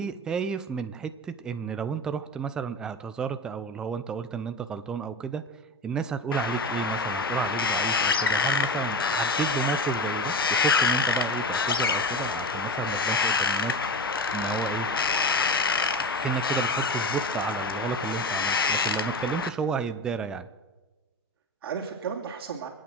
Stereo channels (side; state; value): both; normal; correlation 0.26